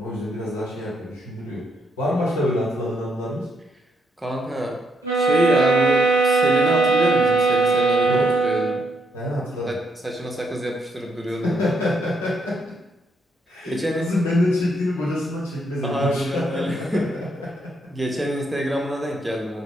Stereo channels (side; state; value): both; normal; correlation 0.76